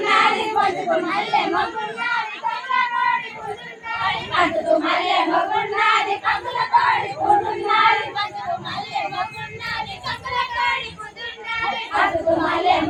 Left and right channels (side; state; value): both; identical; correlation 1.00